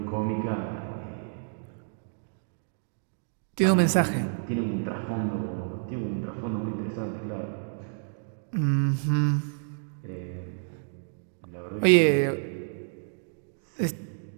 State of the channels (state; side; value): silent; left; digital silence